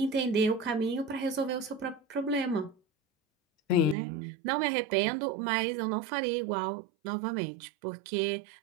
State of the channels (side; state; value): left; drops out; at 4.0 s